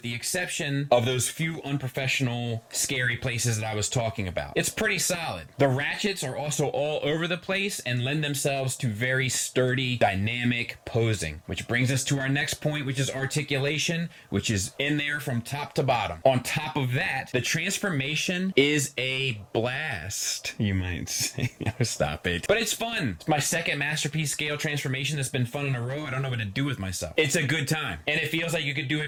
the exception of those few unprofessional, scary places that I was talking about. It's pretty solid. The ratchets are also all over the place and lend themselves to very sturdy, dynamic posing, which brings us to our next point, which is articulation, which is in there from top to bottom. On top of that, the transformation is a blast, you might say. Stop it. But it's fun. It's my second masterpiece scale transformation that's been fun in a row. I don't know what to do with myself. It's a good time, and it feels like you could do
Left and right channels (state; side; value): identical; both; correlation 1.00